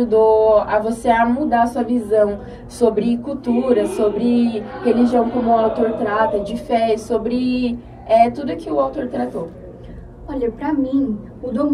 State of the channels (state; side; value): identical; both; correlation 1.00